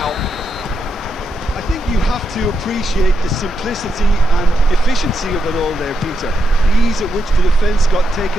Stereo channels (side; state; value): both; normal; correlation 0.83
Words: I think you have to appreciate the simplicity and efficiency of it all there, Peter. The ease at which the defence got